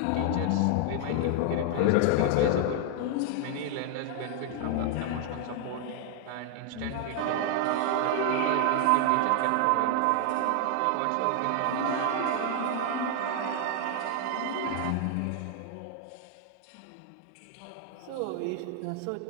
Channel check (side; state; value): both; different; correlation 0.00